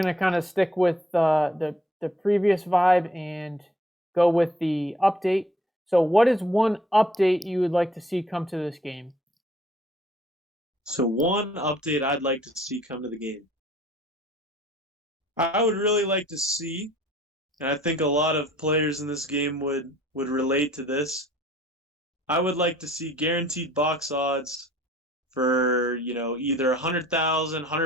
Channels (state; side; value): normal; both; correlation 0.59